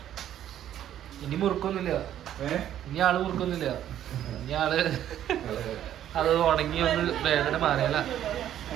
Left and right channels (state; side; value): quieter; left; 11.2 dB